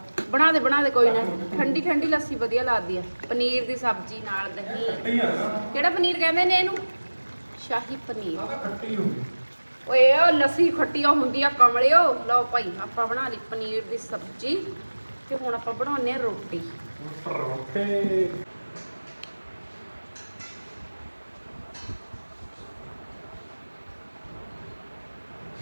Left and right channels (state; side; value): inverted; both; correlation -1.00